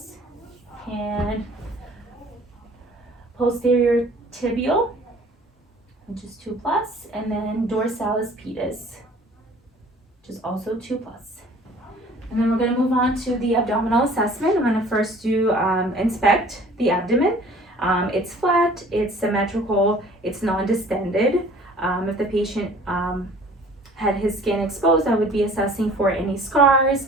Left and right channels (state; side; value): normal; both; correlation 0.51